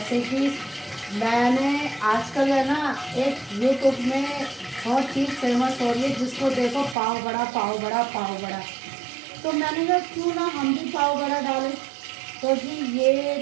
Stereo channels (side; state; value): left; drops out; at 7.0 s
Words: कि मैंने आजकल है ना, एक यूट्यूब में बहुत चीज़ फेमस हो रही है, जिसको देखो पाव बड़ा पाव बड़ा पाव बड़ा। तो मैंने कहा क्यों ना हम भी पाव बड़ा डालें। तो जी ये